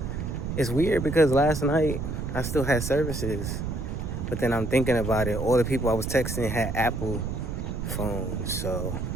it's weird because last night I still had services, but then I'm thinking about it. All the people I was texting had Apple phones, so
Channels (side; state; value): right; noise; rumble, 4 dB below the sound